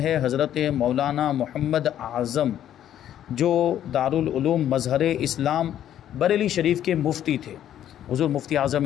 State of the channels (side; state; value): right; quieter; 11.0 dB